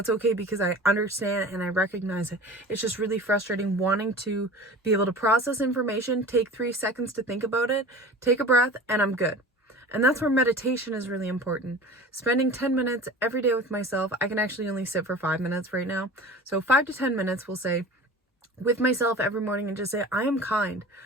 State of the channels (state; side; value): normal; both; correlation 0.38